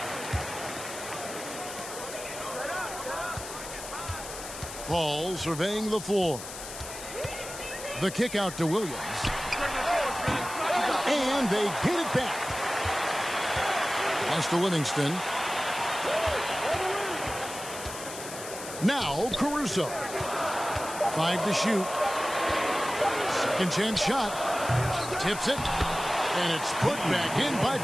Paul surveying the floor. The kick out to Williams. And they get it back. Pass to Livingston. Now Caruso. 5 to shoot. Second chance shot. Tips it. And it's put back in by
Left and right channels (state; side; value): noise; left; hiss, 10 dB below the sound